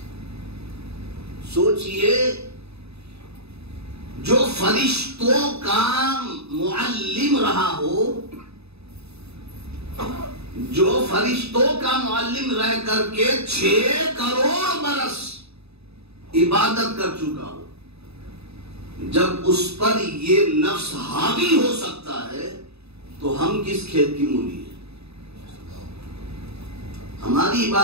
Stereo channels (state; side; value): late; left; 0.79 ms